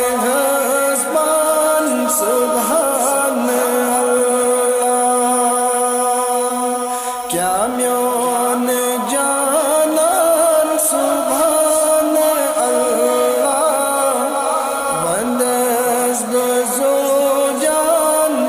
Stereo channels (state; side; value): identical; both; correlation 1.00